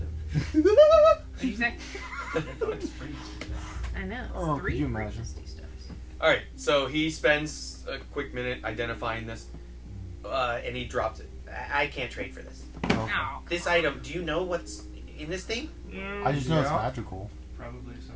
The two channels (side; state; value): both; identical; correlation 1.00